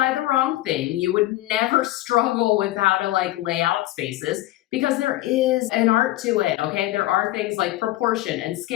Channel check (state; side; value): quieter; right; 16.4 dB